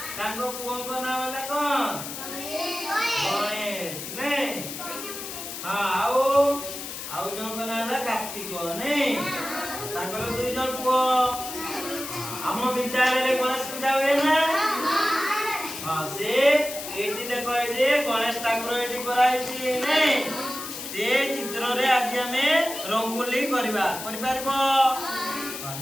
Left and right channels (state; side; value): noise; left; hiss, 8 dB below the sound